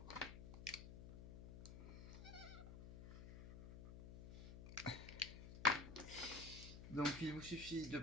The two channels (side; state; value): left; noise; hum, 10 dB below the sound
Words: Donc, il vous suffit de